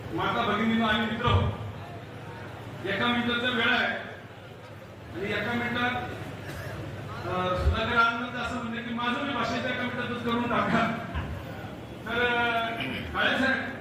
माता भगिनींनो आणि मित्र, एका मिनिटाचा वेळ आहे आणि एका मिनिटात सुधाकर आनंद असं म्हणते की माझं मी भाषेच्या एका मिनिटातच करून टाका. तर काळे साहेब,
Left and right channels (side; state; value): both; identical; correlation 1.00